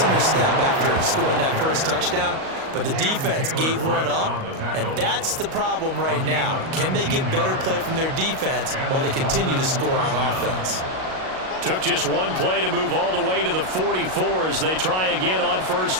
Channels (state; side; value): late; left; 38 ms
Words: in their step after scoring that first touchdown. but the defense gave one up, and that's the problem right now. Can they get better play from their defense while they continue to score on offense? Took just one play to move all the way to the 44 as they try again on